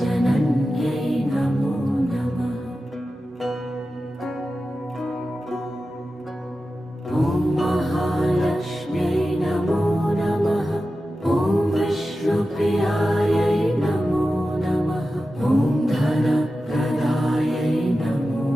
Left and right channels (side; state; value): both; normal; correlation 0.93